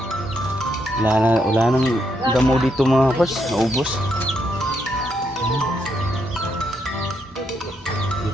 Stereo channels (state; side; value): normal; both; correlation 0.78